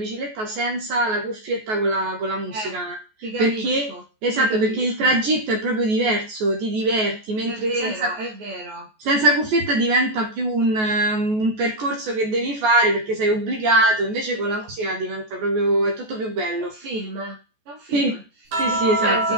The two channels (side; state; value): left; late; 14 ms